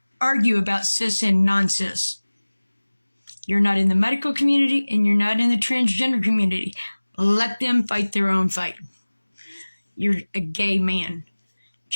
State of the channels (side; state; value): both; inverted; correlation -1.00